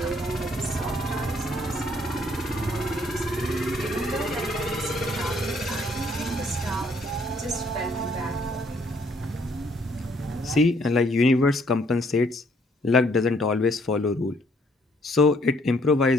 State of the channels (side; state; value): both; normal; correlation 0.66